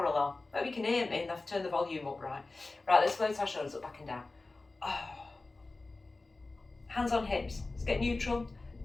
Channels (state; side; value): quieter; right; 3.3 dB